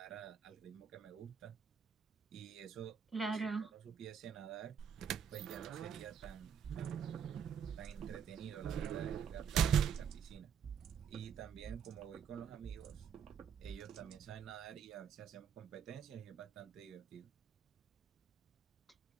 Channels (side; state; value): left; quieter; 7.6 dB